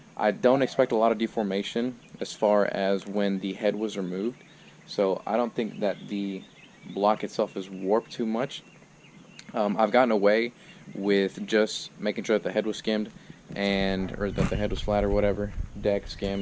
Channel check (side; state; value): both; identical; correlation 1.00